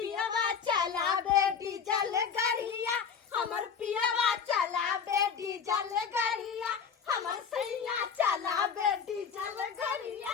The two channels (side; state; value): right; quieter; 6.6 dB